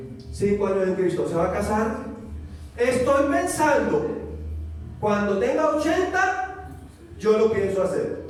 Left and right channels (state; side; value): identical; both; correlation 1.00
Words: 5 años en Cristo se va a casar. Estoy pensando, cuando tenga 80, yo lo pienso hacer.